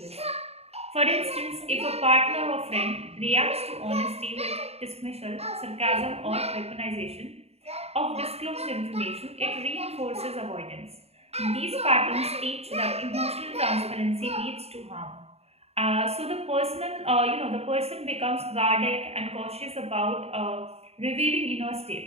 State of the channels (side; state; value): left; late; 0.30 ms